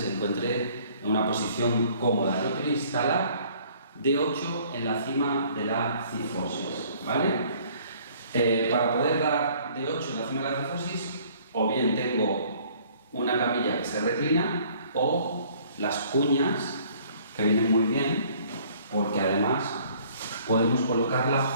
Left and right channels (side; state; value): both; inverted; correlation -0.57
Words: encuentre en una posición cómoda. Yo quiero instalar D8 en la cima de la cifosis, ¿vale? Para poder dar D8 en la cima de la cifosis, o bien tengo una camilla que se reclina o las cuñas, que vienen muy bien, porque además podemos colocarla